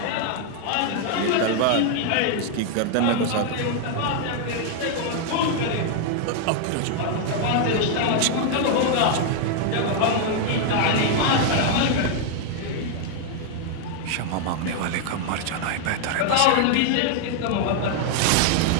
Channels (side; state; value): both; different; correlation 0.00